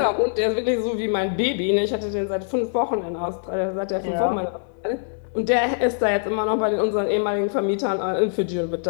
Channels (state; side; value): silent; right; digital silence